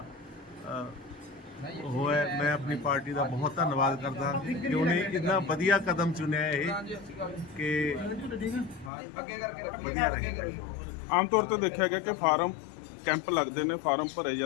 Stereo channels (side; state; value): right; drops out; at 8.9 s